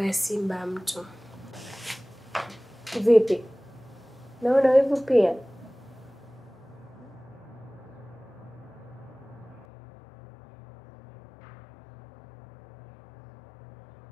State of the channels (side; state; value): right; drops out; at 9.7 s